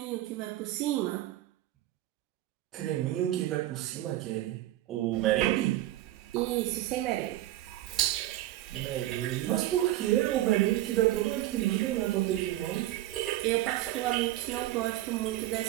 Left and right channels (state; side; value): quieter; left; 14.7 dB